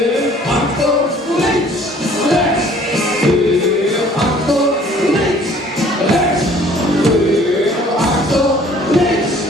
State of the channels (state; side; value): normal; both; correlation 0.55